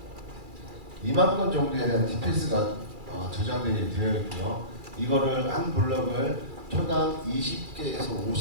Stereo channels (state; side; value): late; left; 2.3 ms